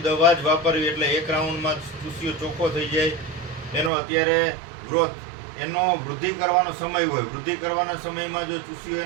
જ વાપરવી. એટલે 1 રાઉન્ડમાં ચૂસિયો ચોખ્ખો થઈ જાય. એનો અત્યારે ગ્રોથ, એનો વૃદ્ધિ કરવાનો સમય હોય, વૃદ્ધિ કરવાના સમયમાં જો ચૂસિયો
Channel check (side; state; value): left; drops out; at 3.9 s